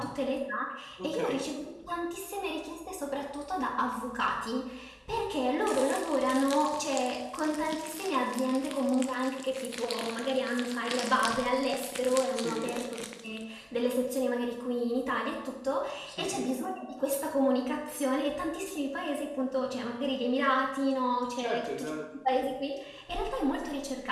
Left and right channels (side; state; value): both; identical; correlation 1.00